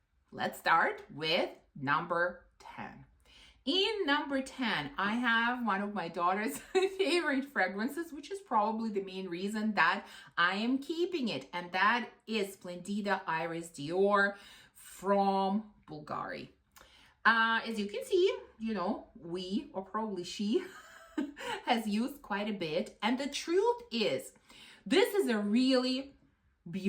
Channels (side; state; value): both; identical; correlation 1.00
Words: let's start with number 10. In number 10, I have one of my daughter's favorite fragrances, which is probably the main reason that I am keeping it. And that is Splendida Iris Dior from Bulgari. As you can see, we, or probably she, has used quite a bit. And the truth is, this is a really